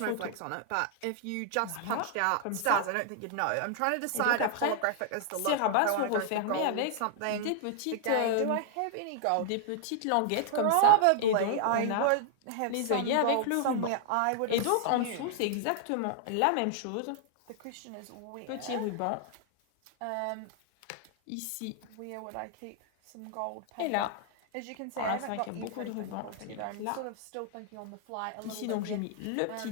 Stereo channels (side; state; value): both; different; correlation 0.00